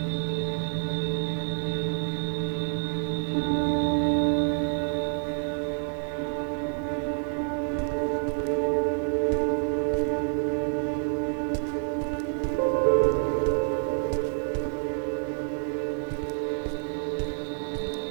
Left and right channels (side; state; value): left; silent; 57 dB below the other